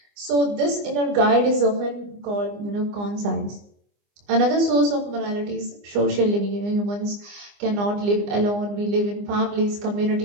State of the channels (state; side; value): late; left; 24 ms